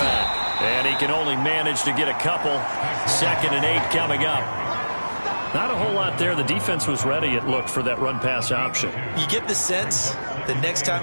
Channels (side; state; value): both; inverted; correlation -1.00